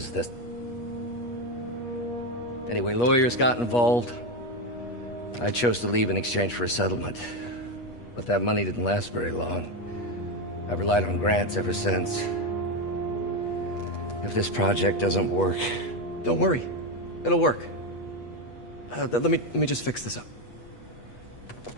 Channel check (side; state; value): right; late; 8.3 ms